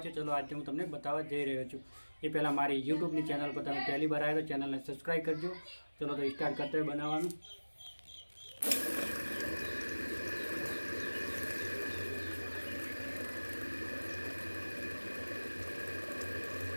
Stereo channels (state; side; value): inverted; both; correlation -1.00